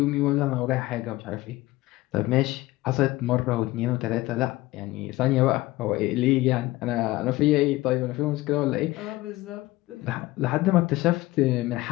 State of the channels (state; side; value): quieter; right; 18.5 dB